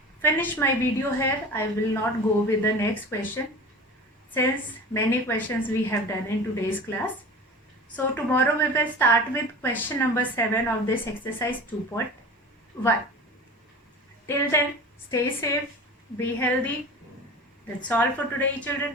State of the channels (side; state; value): both; normal; correlation 0.36